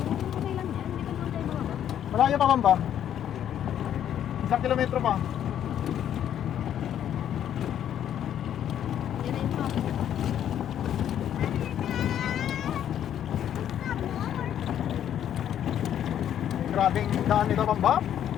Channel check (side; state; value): right; quieter; 10.2 dB